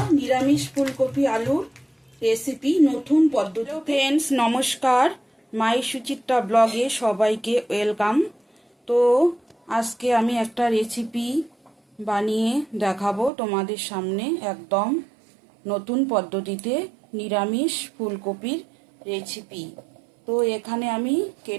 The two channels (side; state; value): left; drops out; at 13.3 s